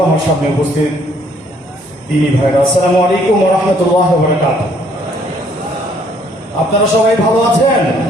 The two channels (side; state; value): both; normal; correlation 0.64